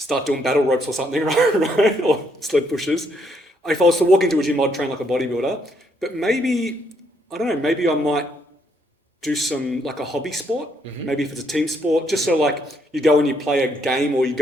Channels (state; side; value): normal; both; correlation 0.72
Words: doing battle ropes or something, right? Or sled pushes. If I was to walk into a gym, I'd train like a bodybuilder. But maybe, I don't know, maybe I might do some, like a hobby sport. Maybe if it's a team sport, just so like you go and you play a game or you